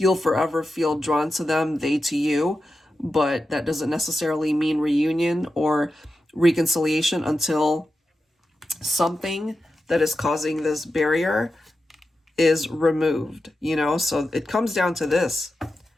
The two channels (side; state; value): both; normal; correlation 0.91